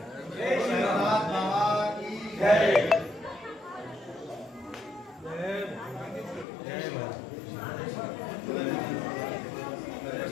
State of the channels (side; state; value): right; drops out; at 6.5 s